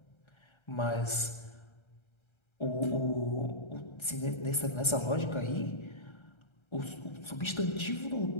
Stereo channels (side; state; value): right; late; 1.3 ms